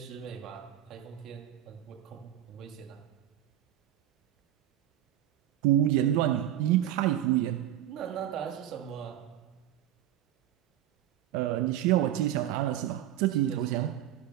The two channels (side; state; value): left; quieter; 12.1 dB